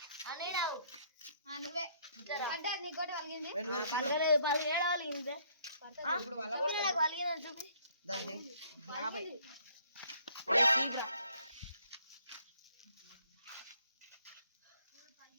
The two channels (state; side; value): inverted; both; correlation -0.63